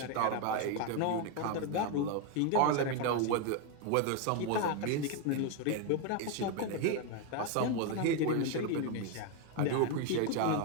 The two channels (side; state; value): both; different; correlation 0.01